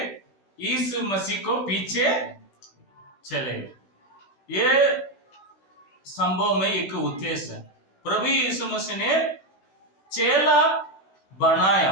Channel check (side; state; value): right; late; 16 ms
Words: यीशु मसीह को पीछे चले। ये संभव में एक उद्देश्य है, प्रभु यीशु मसीह ने चेला